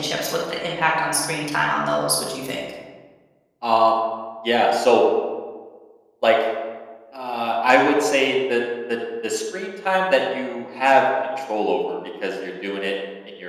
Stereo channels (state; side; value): identical; both; correlation 1.00